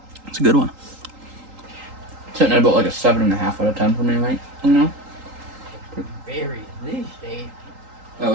It's a good one. Sitting at about like a 7.5 out of 10 for me, right? You know? Very least, eh? At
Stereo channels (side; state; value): left; late; 3.8 ms